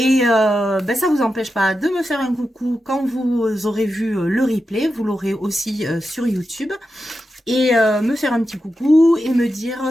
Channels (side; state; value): both; normal; correlation 0.89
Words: ça vous empêche pas de me faire un coucou quand vous aurez vu le replay, vous l'aurez aussi sur YouTube et me faire un petit coucou et me dire